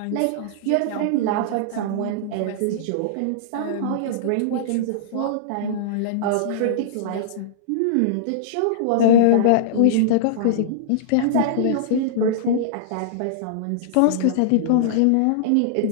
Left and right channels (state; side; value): different; both; correlation -0.02